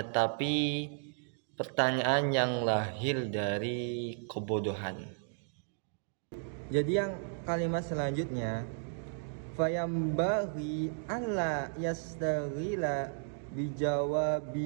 pertanyaan yang lahir dari kebodohan. Jadi yang kalimat selanjutnya, fayambaghi alla yastaghila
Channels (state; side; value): silent; left; digital silence